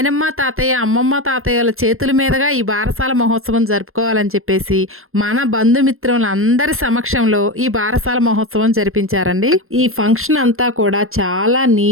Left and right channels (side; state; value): left; late; 0.61 ms